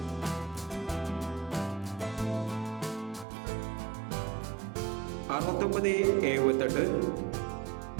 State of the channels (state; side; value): drops out; left; at 3.2 s